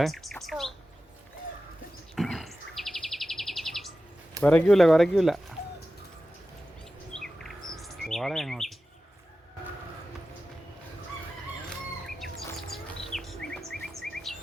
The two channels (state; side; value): normal; both; correlation 0.94